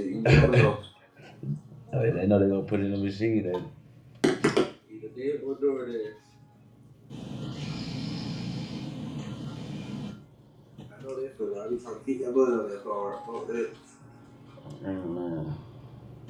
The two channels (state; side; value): identical; both; correlation 1.00